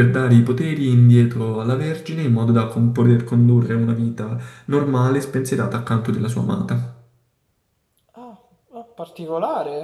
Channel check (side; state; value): both; identical; correlation 1.00